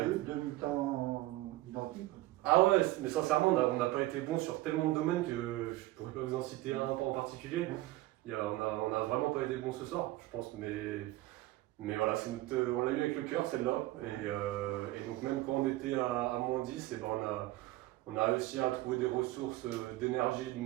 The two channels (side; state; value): left; quieter; 17.6 dB